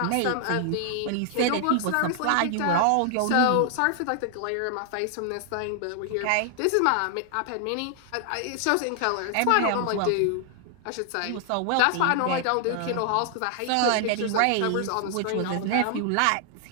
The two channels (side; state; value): both; different; correlation 0.00